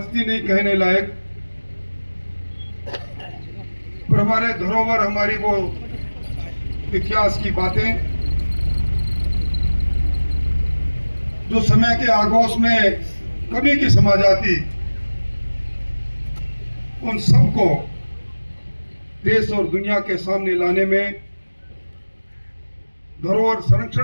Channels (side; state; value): both; inverted; correlation -1.00